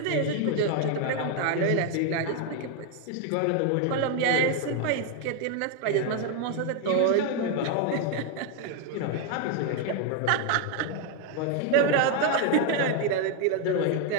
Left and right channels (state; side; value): different; both; correlation 0.01